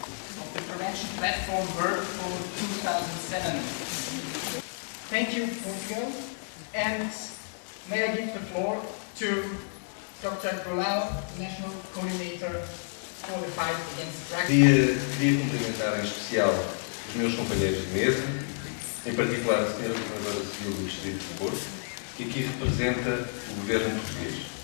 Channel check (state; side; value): silent; right; digital silence